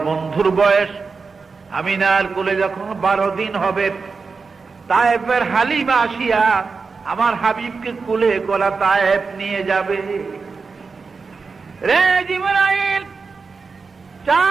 বন্ধুর বয়স আমিনার কোলে যখন 12 দিন হবে, তায়েফের হালিমা আসিয়া আমার হাবিবকে কোলে কোলা তায়েফ নিয়ে যাবে। রে জিবরাইল,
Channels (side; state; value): left; quieter; 4.7 dB